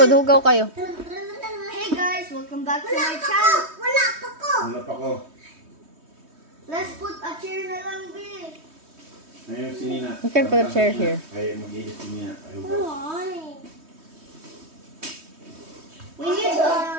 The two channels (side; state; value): left; late; 3.2 ms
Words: hugaw kayo. Hey guys, welcome back to my channel. Wala pa ko. Let's put a chair na lang, B. Ayun, si Nina. You can put a chair here. Ay, mag-ilis si Nina. Ayun ba? We need a